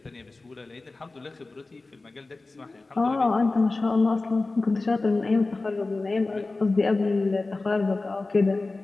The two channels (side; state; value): right; quieter; 3.4 dB